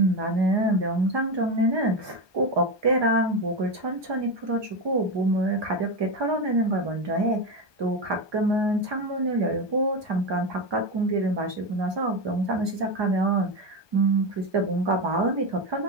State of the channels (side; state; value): left; late; 1.2 ms